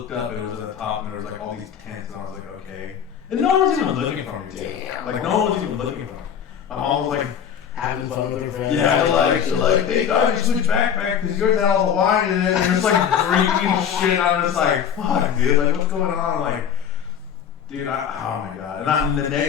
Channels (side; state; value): right; quieter; 8.3 dB